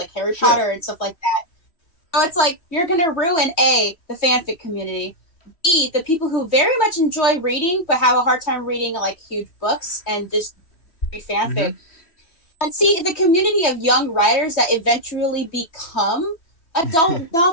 Harry Sure. Potter and stuff like that. So it's like you're gonna ruin the fanfic community. B, the people who very much enjoy reading but have a hard time reading like huge books and just read Mm-hmm. fanfic. And C, the community of young writers that eventually become adult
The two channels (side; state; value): right; late; 3.1 ms